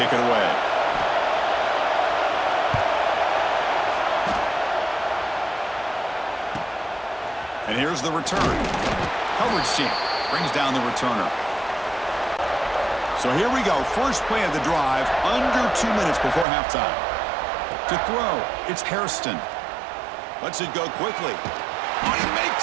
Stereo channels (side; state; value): left; drops out; at 16.4 s